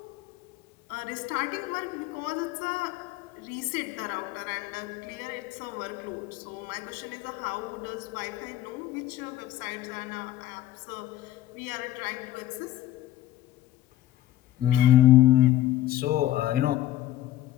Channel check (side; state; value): right; quieter; 13.8 dB